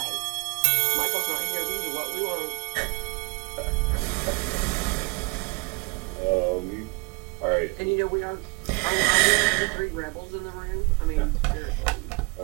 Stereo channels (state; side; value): quieter; left; 29.2 dB